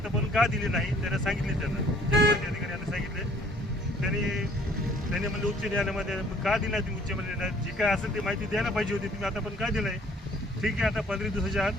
का दिली नाही त्यांना सांगितले, त्यांना जनमाहिती अधिकारी यांना सांगितले। त्यांनी म्हणले उच्च न्यायालयामध्ये का दिला तुम्ही उच्च न्यायालयात जे काय असेल ते माहिती द्यायला पाहिजे होती, तुम्ही आतापर्यंत का दिलं आहे? ठीक आहे, आता 15 दिवसाच्या आत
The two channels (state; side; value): normal; both; correlation 0.58